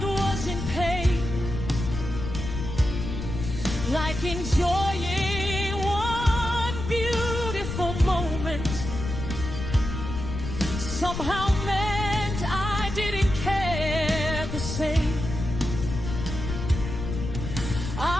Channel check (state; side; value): noise; left; rumble, 6 dB below the sound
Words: was in pain, like enjoying one beautiful moment somehow meant I didn't care the same.